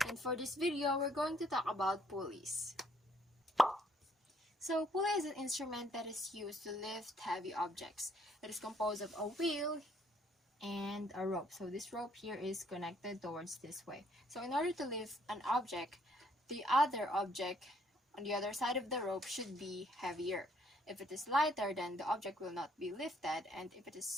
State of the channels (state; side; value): normal; both; correlation 0.66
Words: And for this video, we're going to talk about pulleys. So, pulley is an instrument that is used to lift heavy objects. It is composed of a wheel and a rope. So this rope here is connected towards this way. So in order to lift an object, the other object on the other side of the rope should be heavier. If it is lighter, then the object will not be lifted, and